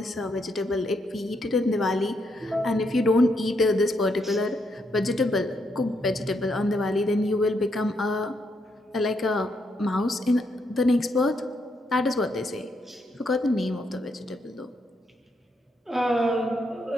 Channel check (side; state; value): both; normal; correlation 0.77